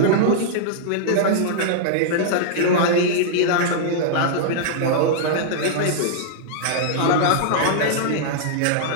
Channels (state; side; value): different; both; correlation -0.01